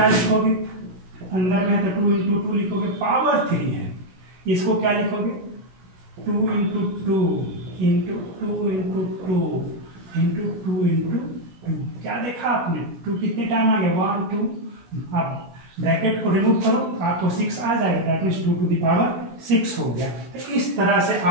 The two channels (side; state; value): left; late; 16 ms